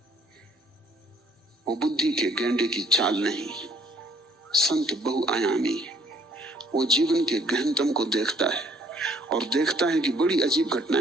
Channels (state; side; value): normal; both; correlation 0.62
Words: वो बुद्धि के गेंडे की चाल नहीं, संत बहुआयामी है। वो जीवन के गहनतम को देखता है और देखता है कि बड़ी अजीब